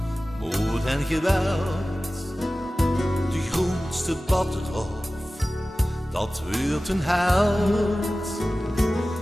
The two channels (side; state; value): both; normal; correlation 0.96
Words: moord en geweld. De grootste bad eraf, dat wordt een held.